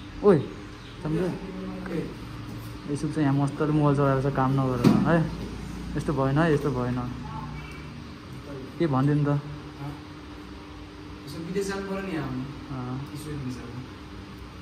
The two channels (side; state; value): both; identical; correlation 1.00